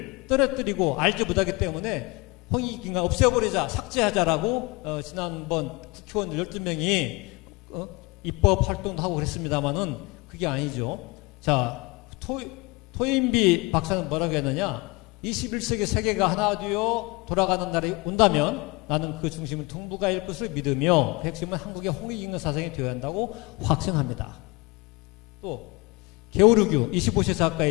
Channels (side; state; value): right; quieter; 25.2 dB